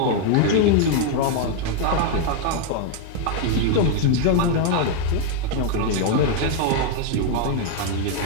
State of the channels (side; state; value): both; different; correlation 0.00